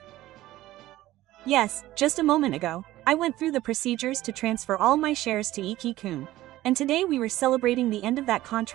Yes, just a moment ago, I went through the procedures to transfer all my shares to Iki-kun, and today we were celebrating the end of that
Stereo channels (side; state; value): left; quieter; 15.8 dB